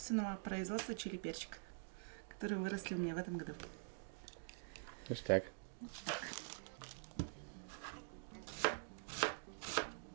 производства чили-перчика, которые выросли у меня в этом году. Ништяк.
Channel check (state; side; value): silent; left; digital silence